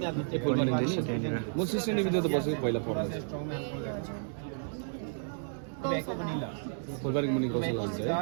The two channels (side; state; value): left; silent; digital silence